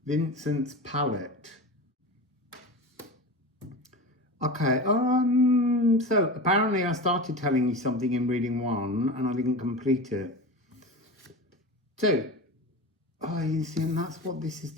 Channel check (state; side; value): normal; both; correlation 0.28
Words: Vincent's palette. Okay, so apparently I started telling you something in reading 1 and I didn't complete it. So, you see, and that's what this is